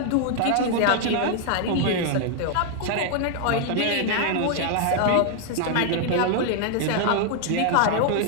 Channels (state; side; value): different; both; correlation 0.00